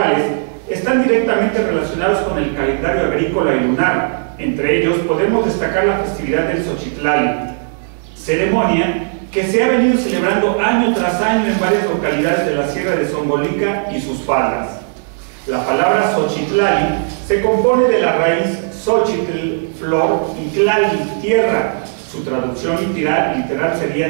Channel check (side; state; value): left; silent; digital silence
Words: están directamente relacionados con el calendario agrícola y lunar. Entre ellos podemos destacar la festividad del Xochitlali, ceremonia que se ha venido celebrando año tras año en varias localidades de la Sierra de Zongolica y sus faldas. La palabra Xochitlali se compone de la raíz Xochitl, flor, y Tlali, tierra. Su traducción literal